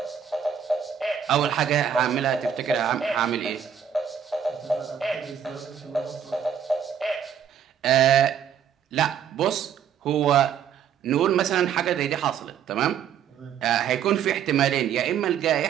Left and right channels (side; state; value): left; quieter; 8.4 dB